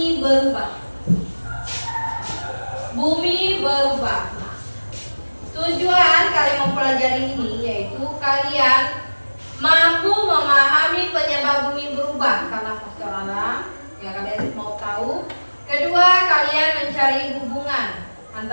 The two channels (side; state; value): both; inverted; correlation -1.00